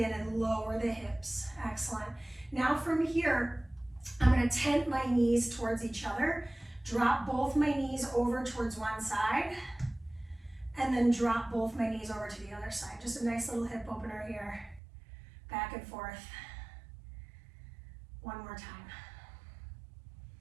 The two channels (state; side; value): drops out; left; at 14.8 s